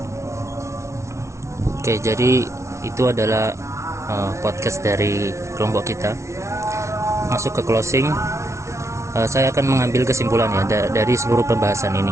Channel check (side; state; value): left; late; 0.14 ms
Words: Oke, jadi itu adalah podcast dari kelompok kita. Masuk ke closing, saya akan mengambil kesimpulan ya dari seluruh pembahasan ini.